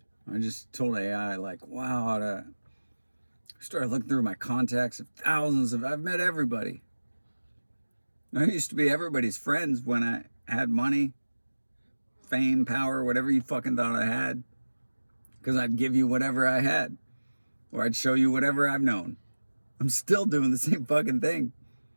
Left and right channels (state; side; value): inverted; both; correlation -1.00